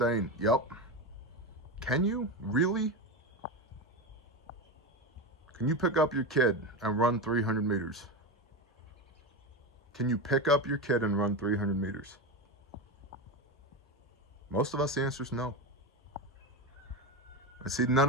Yep. Can you? Really? Can you pick up your kid and run 300 meters? Can you pick up your kid and run 300 meters? Most of us, the answer is no. And see,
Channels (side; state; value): both; normal; correlation 0.18